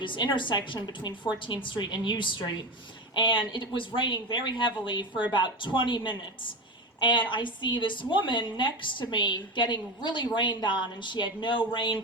intersection between 14th Street and U Street, and it was raining very heavily for about 20 minutes. And I see this woman next to me getting really rained on, and she had no rain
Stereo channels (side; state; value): both; normal; correlation 0.22